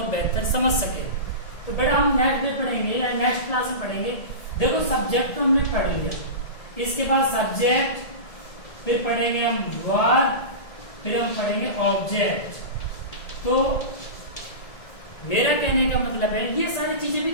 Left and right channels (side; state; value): right; late; 1.9 ms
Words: बेहतर समझ सके। तो बेटा हम नेक्स्ट डे पढ़ेंगे या नेक्स्ट क्लास में पढ़ेंगे। देखो सब्जेक्ट तो हमने पढ़ लिया, इसके बाद सब्जेक्ट, फिर पढ़ेंगे हम वर्ब, फिर हम पढ़ेंगे ऑब्जेक्ट। तो मेरा कहने का मतलब है ये सारी चीजें भी